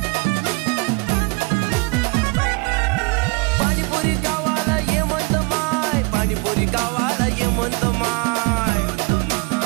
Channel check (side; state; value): left; quieter; 28.9 dB